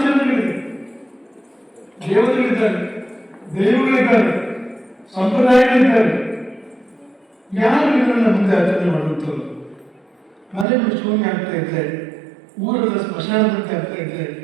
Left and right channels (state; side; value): drops out; left; at 10.7 s